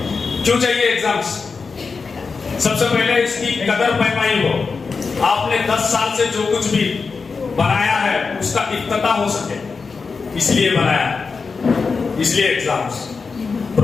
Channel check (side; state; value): right; quieter; 4.8 dB